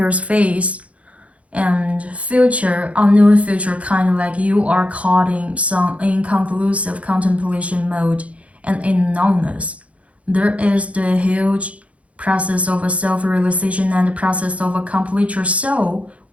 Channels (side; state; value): left; late; 0.064 ms